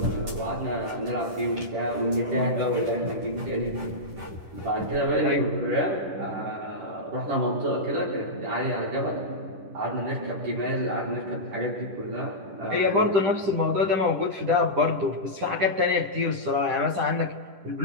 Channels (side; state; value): left; late; 10 ms